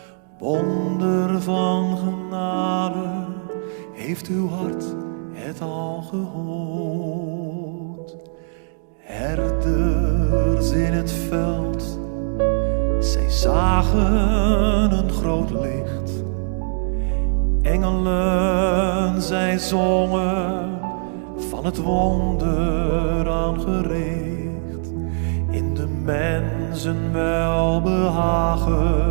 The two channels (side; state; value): left; silent; digital silence